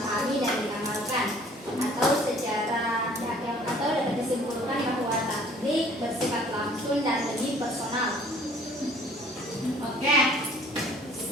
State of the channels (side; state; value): both; normal; correlation 0.54